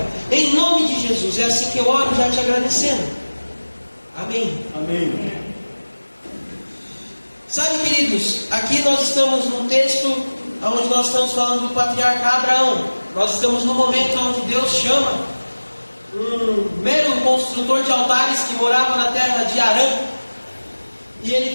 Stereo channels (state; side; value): inverted; both; correlation -1.00